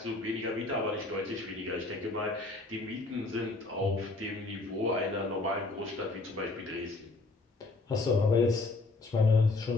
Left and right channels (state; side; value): quieter; right; 3.3 dB